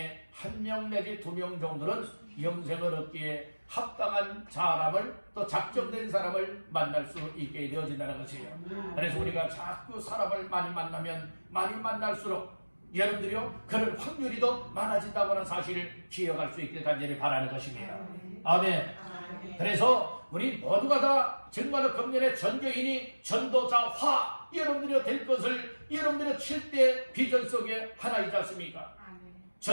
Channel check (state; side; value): inverted; both; correlation -1.00